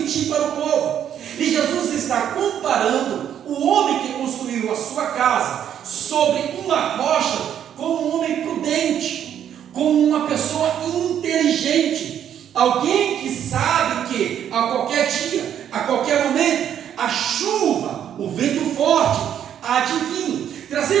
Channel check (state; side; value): quieter; left; 9.6 dB